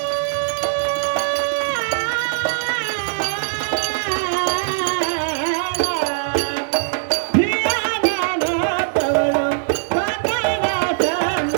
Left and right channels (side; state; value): left; silent; digital silence